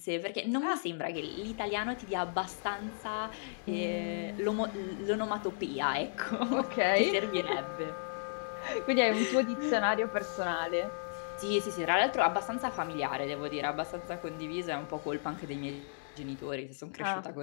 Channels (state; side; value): silent; right; digital silence